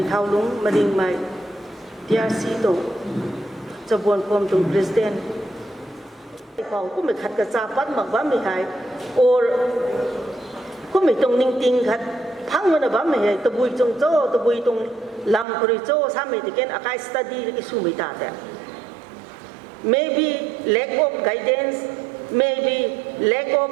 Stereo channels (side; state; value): left; drops out; at 15.5 s